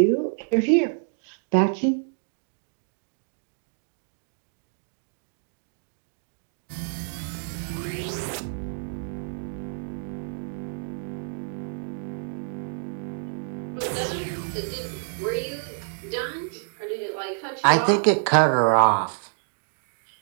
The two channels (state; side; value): silent; left; digital silence